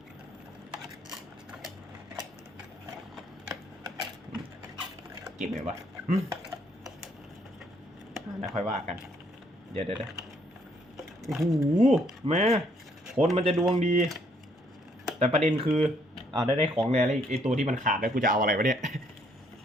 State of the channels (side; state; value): both; normal; correlation 0.68